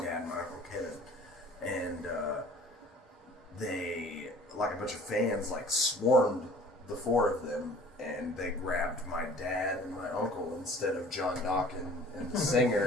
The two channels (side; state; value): both; normal; correlation 0.49